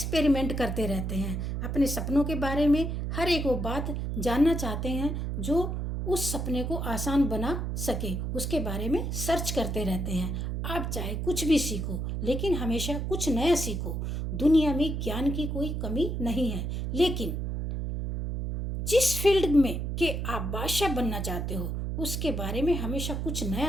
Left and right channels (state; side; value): noise; right; hum, 2 dB below the sound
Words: करते रहते हैं, अपने सपनों के बारे में हर एक वो बात जानना चाहते हैं जो उस सपने को आसान बना सके, उसके बारे में सर्च करते रहते हैं। आप चाहे कुछ भी सीखो, लेकिन हमेशा कुछ नया सीखो। दुनिया में ज्ञान की कोई कमी नहीं है, लेकिन जिस फील्ड में के आप बादशाह बनना चाहते हो उसके बारे में हमेशा कुछ